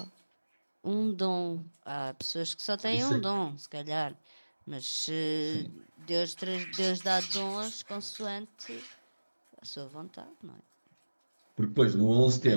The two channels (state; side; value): inverted; both; correlation -1.00